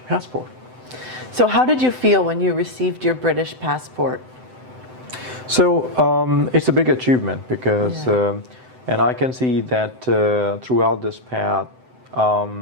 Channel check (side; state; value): left; late; 7.9 ms